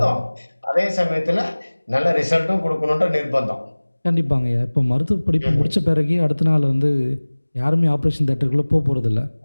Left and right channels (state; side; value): inverted; both; correlation -1.00